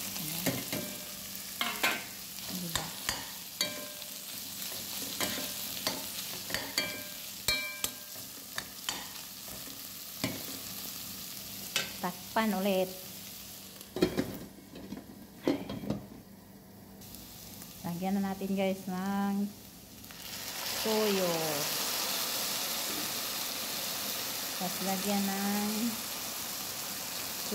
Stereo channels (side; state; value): both; identical; correlation 1.00